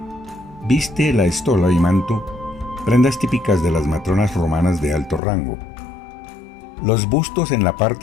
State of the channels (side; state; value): right; drops out; at 5.2 s